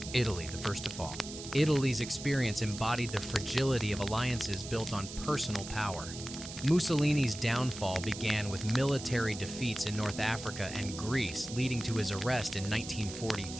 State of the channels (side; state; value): right; noise; hiss, 11 dB below the sound